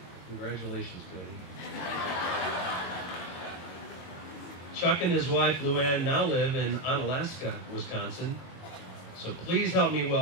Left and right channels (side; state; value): right; late; 22 ms